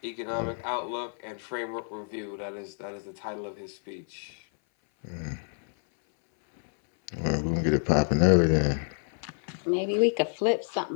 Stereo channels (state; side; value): silent; right; 59 dB below the other